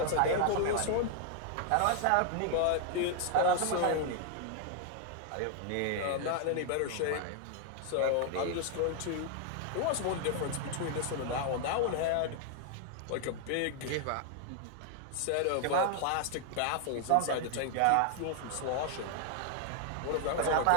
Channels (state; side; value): different; both; correlation 0.00